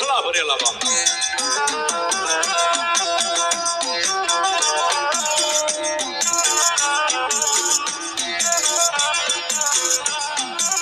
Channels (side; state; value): both; identical; correlation 1.00